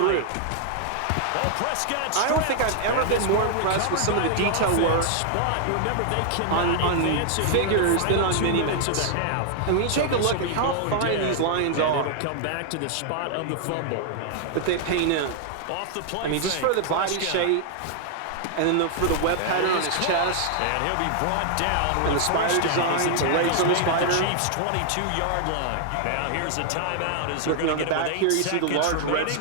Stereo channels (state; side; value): different; both; correlation 0.00